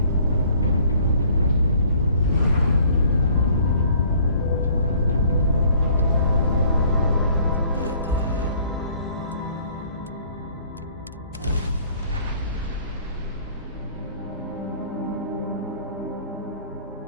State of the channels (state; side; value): inverted; both; correlation -0.57